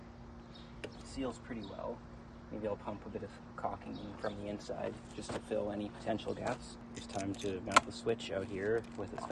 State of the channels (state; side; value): identical; both; correlation 1.00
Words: It seals pretty well. Maybe I'll pump a bit of caulking in from the inside just to fill any potential gaps. It's time to mount the switch out here with its